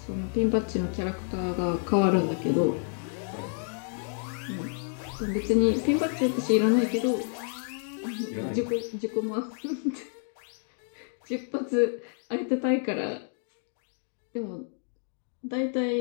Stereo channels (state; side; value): silent; right; 58 dB below the other